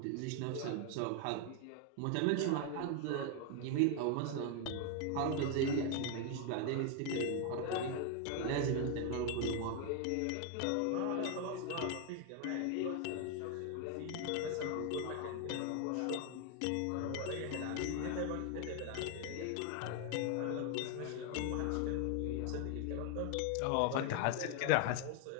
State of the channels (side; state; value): both; different; correlation 0.00